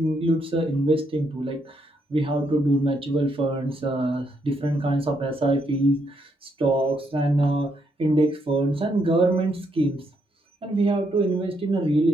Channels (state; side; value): normal; both; correlation 0.76